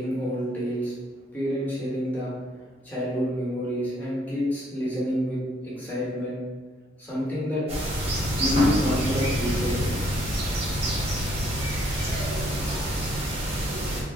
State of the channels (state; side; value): normal; both; correlation 0.68